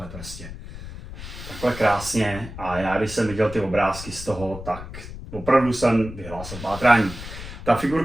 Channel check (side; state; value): left; noise; rumble, 12 dB below the sound